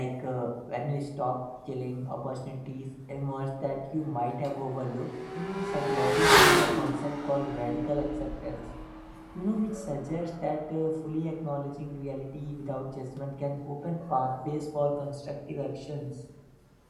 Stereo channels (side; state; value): both; identical; correlation 1.00